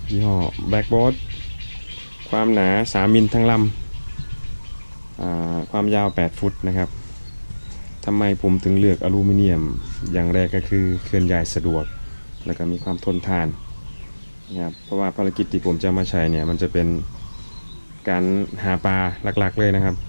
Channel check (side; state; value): both; inverted; correlation -1.00